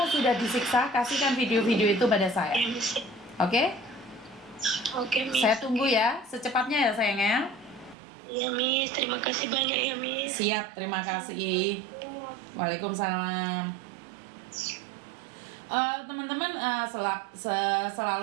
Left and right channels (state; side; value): drops out; left; at 8.0 s